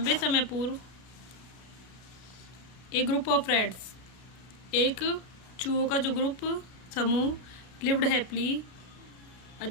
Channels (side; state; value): right; late; 33 ms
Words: पूर्व एक group of rats, एक चूहों का जो group समूह lived happily